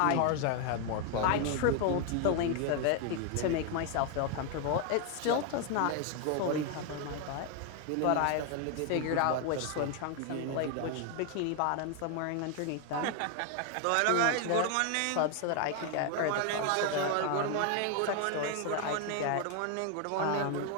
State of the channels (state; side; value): different; both; correlation 0.01